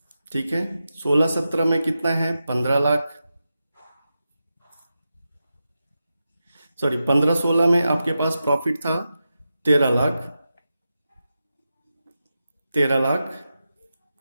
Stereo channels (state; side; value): inverted; both; correlation -0.90